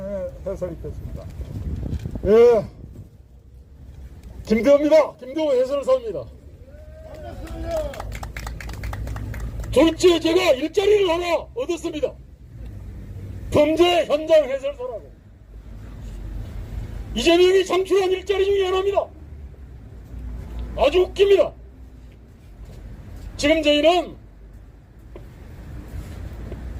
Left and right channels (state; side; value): identical; both; correlation 1.00